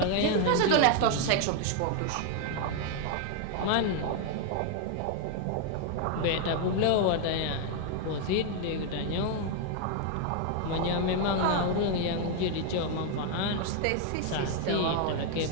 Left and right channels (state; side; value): different; both; correlation 0.00